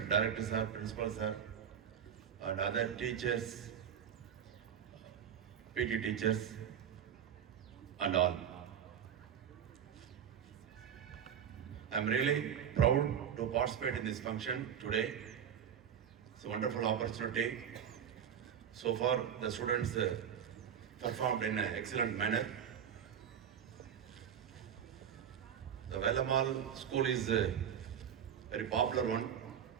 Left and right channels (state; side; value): quieter; left; 8.5 dB